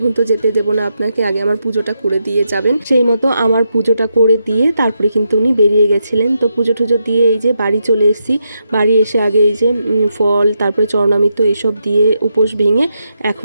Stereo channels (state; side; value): inverted; both; correlation -0.83